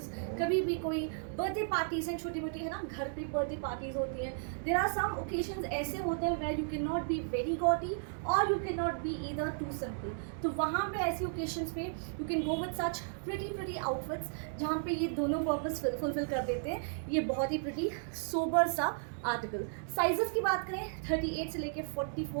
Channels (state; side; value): silent; left; digital silence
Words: कभी भी कोई बर्थडे पार्टीज हैं छोटी मोटी, है ना, घर पे बर्थडे पार्टीज होती हैं. देयर आर सम ओकेजन्स ऐसे होते हैं where you can not be very gaudy और you can not be either too simple. तो वहाँ पे ऐसी ओकेजन्स पे you can go with such pretty outfits जहाँ पे ये दोनों पर्पस फुलफिल कर देते हैं. ये बहुत ही प्रिटी सोबर सा आर्टिकल. साइजेस की बात करें 38 से लेके